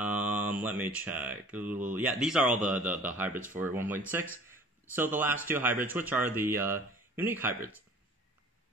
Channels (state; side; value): normal; both; correlation 0.48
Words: me check. Yeah, these are all the hybrids for 1.6. So the last two hybrids, which are the unique hybrids.